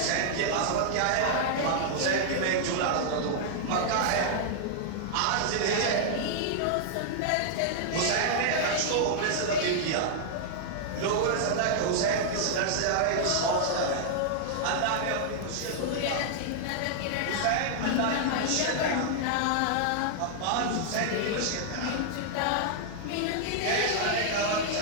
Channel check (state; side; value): different; both; correlation -0.01